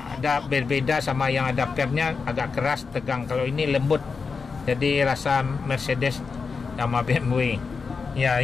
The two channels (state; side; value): quieter; right; 5.0 dB